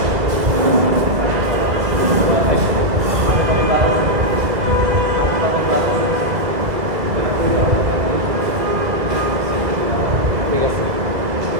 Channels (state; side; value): late; left; 2.0 ms